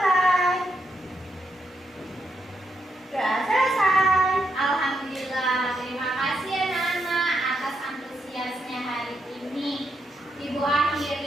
Doa selesai. Alhamdulillah, terima kasih anak-anak atas antusiasnya hari ini. Ibu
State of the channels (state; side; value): normal; both; correlation 0.81